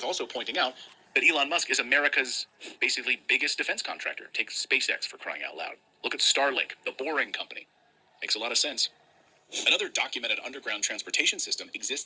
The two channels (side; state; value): both; identical; correlation 1.00